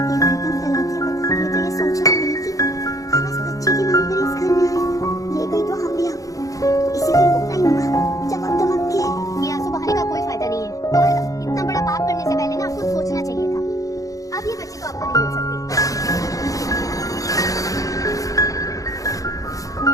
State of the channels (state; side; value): late; right; 0.17 ms